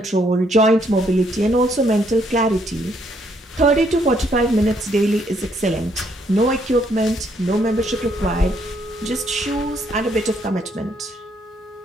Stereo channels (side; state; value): both; normal; correlation 0.71